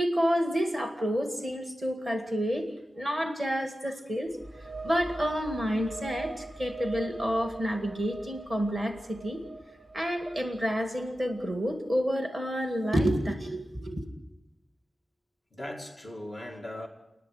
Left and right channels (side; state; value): both; normal; correlation 0.93